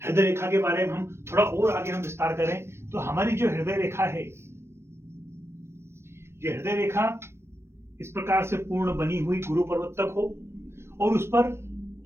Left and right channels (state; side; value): late; left; 0.12 ms